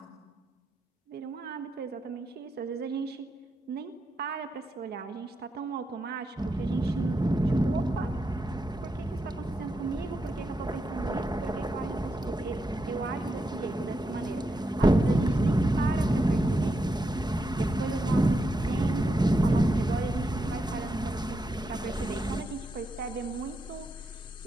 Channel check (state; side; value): normal; both; correlation 0.84